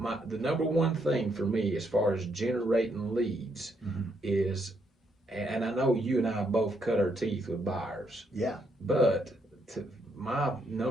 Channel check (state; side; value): normal; both; correlation 0.75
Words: the number one thing for me as far as generating leads is, and I know you and I both cut our teeth with buyers. Yeah. But my